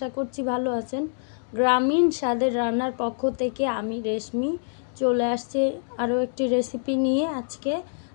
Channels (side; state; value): right; silent; digital silence